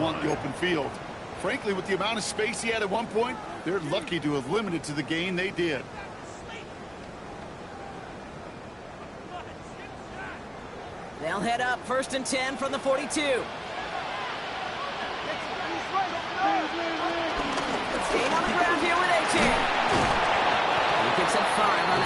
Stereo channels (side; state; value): both; identical; correlation 1.00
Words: want in the open field. Frankly, with the amount of space he had at one point, they're lucky to have limited to the gain they did. They'll head up 1st and 10 from the 42. Staying on the ground here with A-Chain. He picks up 5 on